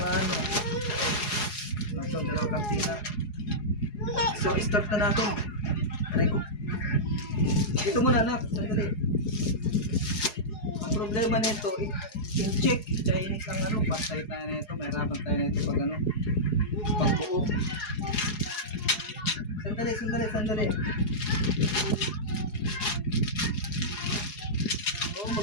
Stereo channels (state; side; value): late; right; 4.8 ms